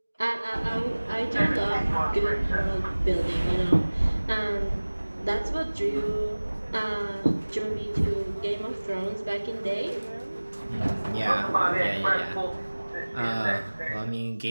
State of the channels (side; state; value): both; inverted; correlation -1.00